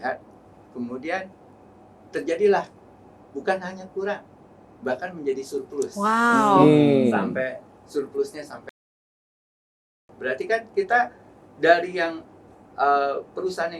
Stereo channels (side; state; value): both; identical; correlation 1.00